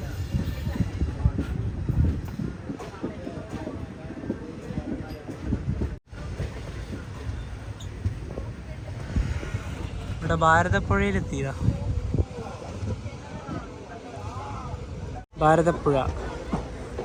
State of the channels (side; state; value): both; identical; correlation 1.00